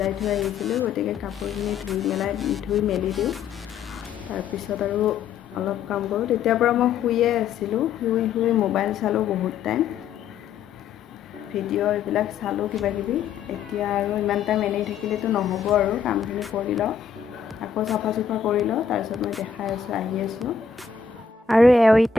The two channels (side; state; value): right; quieter; 6.5 dB